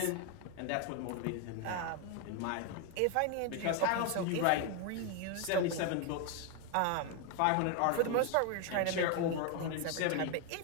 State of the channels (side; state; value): both; different; correlation 0.01